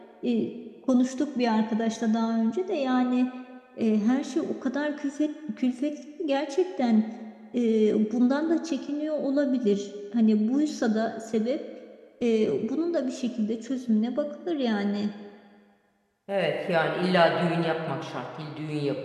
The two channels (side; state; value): both; identical; correlation 1.00